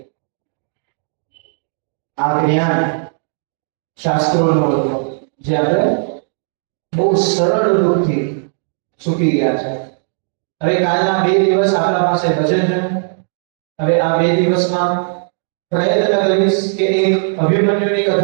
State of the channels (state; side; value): silent; left; digital silence